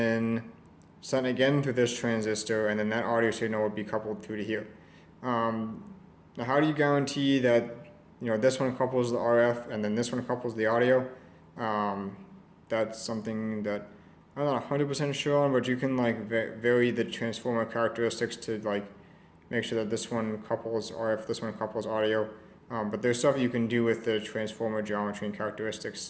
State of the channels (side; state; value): both; identical; correlation 1.00